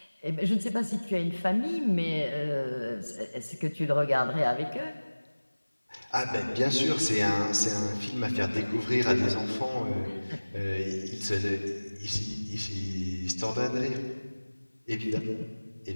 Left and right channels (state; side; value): inverted; both; correlation -1.00